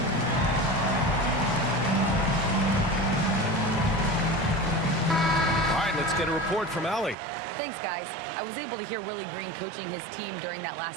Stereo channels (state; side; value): drops out; left; at 7.2 s